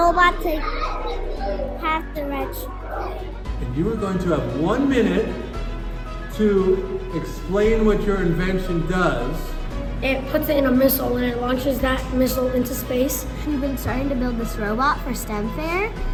to have the red. And you are going to have 1 minute to explain what your invention does. It puts it in a missile and it launches that missile into space. We've been starting to build this robot for STEM Fair.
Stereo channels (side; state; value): both; identical; correlation 1.00